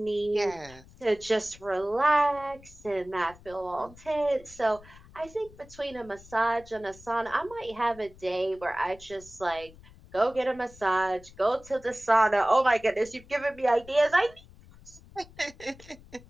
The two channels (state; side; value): noise; left; rumble, 22 dB below the sound